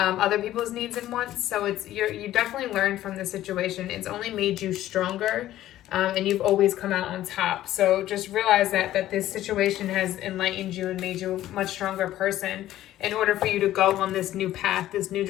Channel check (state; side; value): quieter; right; 13.7 dB